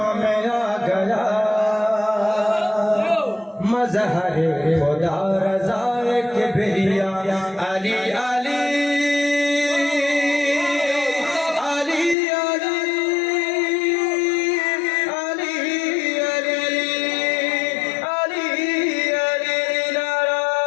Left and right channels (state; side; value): drops out; right; at 12.2 s